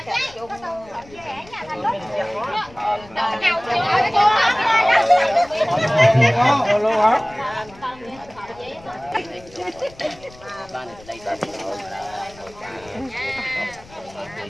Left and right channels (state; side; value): noise; left; rumble, 23 dB below the sound